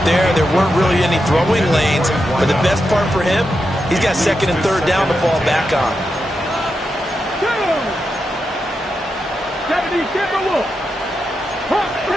there. There weren't really any throwing lanes. But the best part for him, he's got 2nd and 3rd down to fall back on. 70 Timberwolves. Hawk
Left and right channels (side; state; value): both; normal; correlation 0.87